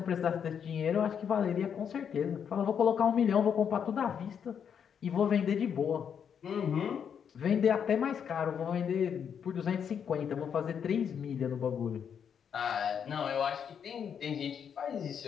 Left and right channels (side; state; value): right; quieter; 7.7 dB